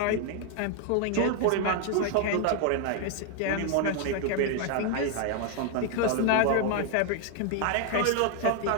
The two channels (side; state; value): both; different; correlation 0.00